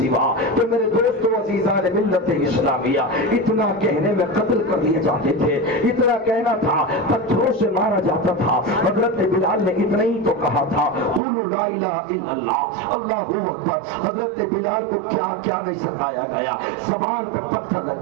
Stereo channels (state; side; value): drops out; left; at 11.2 s